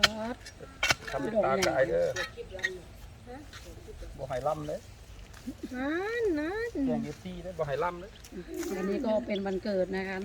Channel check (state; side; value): identical; both; correlation 1.00